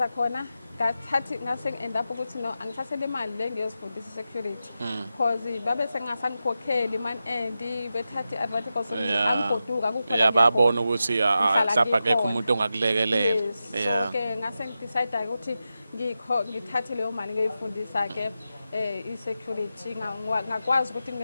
khona ngathi ngase end up ukuthi no angithathele imali le ngiyozifundisa security because babe sengasangikhokheli man and bethatha advantage because angigoduka kukhona babona ukuthi mhlawumbe akekho umuntu ongakulekelela. So ke ngase ngidecide ukuthi ngithathe leyo mali ngiyifundisa ke i-security ngakwazi ukuthi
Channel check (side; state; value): both; inverted; correlation -0.91